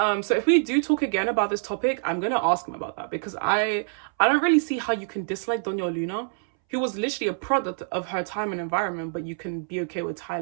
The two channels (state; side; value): silent; left; 61 dB below the other